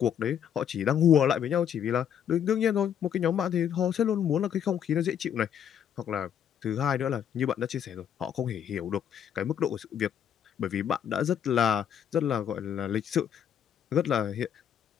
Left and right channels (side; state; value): right; quieter; 8.9 dB